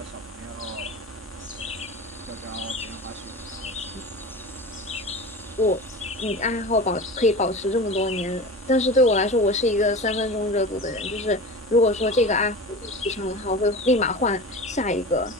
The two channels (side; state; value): both; normal; correlation 0.32